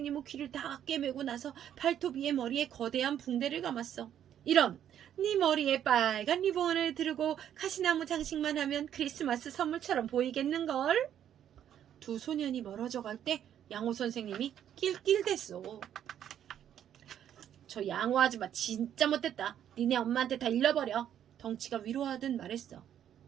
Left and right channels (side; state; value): left; quieter; 10.1 dB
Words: 귀를 다 꿰매고 나서 발톱이의 머리에 거대한 붕대를 감았어. 이런, 네 머리에 빨간 리본을 두르고 가시나무 장식만 하면 크리스마스 선물처럼 보이겠는걸? 두 소년이 멀어져 갈 때 양호 선생님이 낄낄댔어. 저 양호 아줌마 진짜 못됐다. 니네 엄마한테 다 일러버려. 덩치가 위로하듯 말했어.